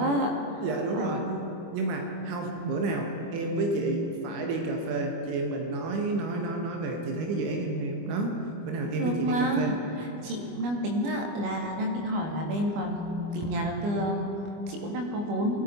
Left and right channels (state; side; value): late; left; 25 ms